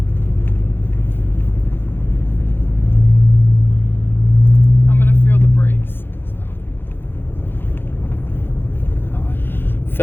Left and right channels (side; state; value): right; late; 0.10 ms